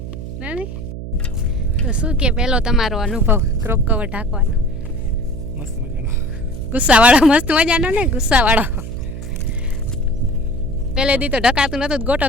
ના નહીં તો શું કે પહેલો તમારો અનુભવ ક્રોપ કવર ઢાંકવાનો? મસ્ત મજાનો. ગુસ્સાવાળો, મસ્ત મજાનો ને ગુસ્સાવાળો. પહેલે દી તો ઢકાતું નહોતું, ગોટો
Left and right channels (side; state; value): right; noise; hum, 9 dB below the sound